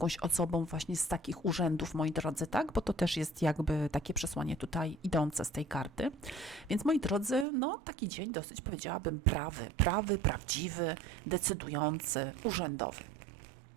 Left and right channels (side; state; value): left; drops out; at 7.5 s